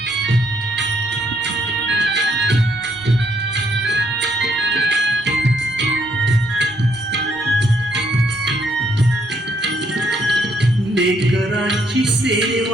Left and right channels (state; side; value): normal; both; correlation 0.71